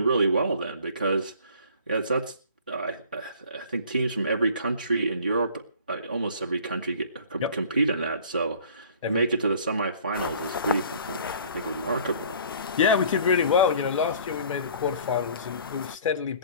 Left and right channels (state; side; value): inverted; both; correlation -0.50